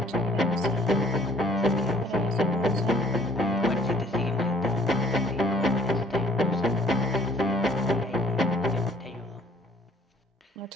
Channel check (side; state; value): both; normal; correlation 0.58